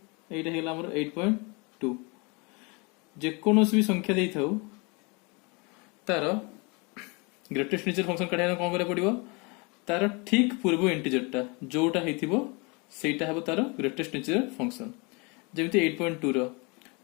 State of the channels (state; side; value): quieter; right; 29.6 dB